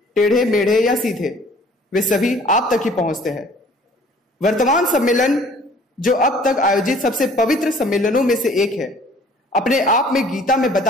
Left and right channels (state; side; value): normal; both; correlation 0.53